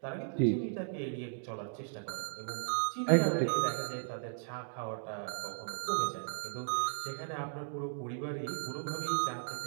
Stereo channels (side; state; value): left; silent; digital silence